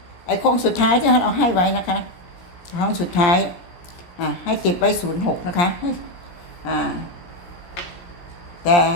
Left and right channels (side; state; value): right; late; 17 ms